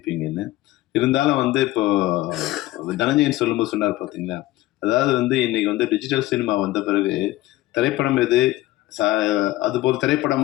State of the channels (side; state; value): right; quieter; 17.1 dB